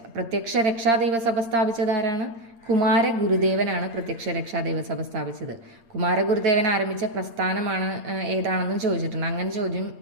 പ്രത്യക്ഷ രക്ഷാ ദൈവസഭ സ്ഥാപിച്ചത് ആരാണ്? കുമാരഗുരുദേവനാണ് പ്രത്യക്ഷ രക്ഷാ ദൈവസഭ സ്ഥാപിച്ചത്. കുമാരഗുരുദേവൻ ആരംഭിച്ച പ്രസ്ഥാനമാണ് ഏതാണെന്നും ചോദിച്ചിട്ടുണ്ട്. അങ്ങനെ ചോദ്യം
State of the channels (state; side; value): late; left; 8.8 ms